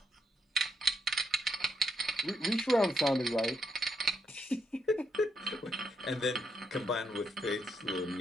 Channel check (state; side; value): normal; both; correlation 0.78